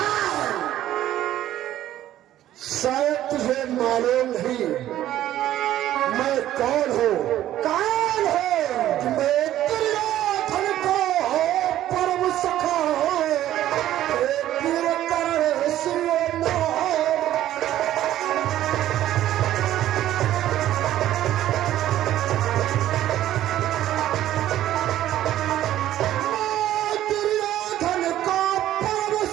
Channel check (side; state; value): left; quieter; 13.0 dB